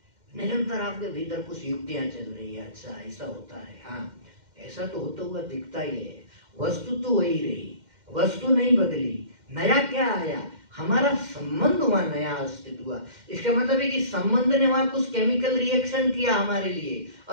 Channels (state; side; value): late; left; 2.1 ms